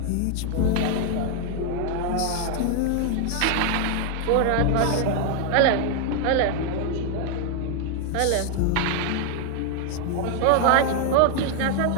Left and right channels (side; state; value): both; different; correlation 0.00